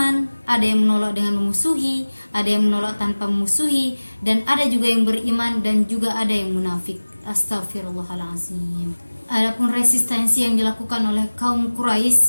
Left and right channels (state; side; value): inverted; both; correlation -1.00